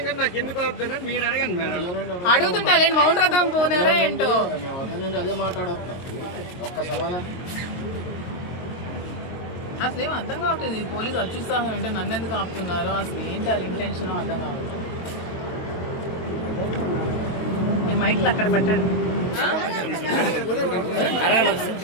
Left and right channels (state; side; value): late; right; 22 ms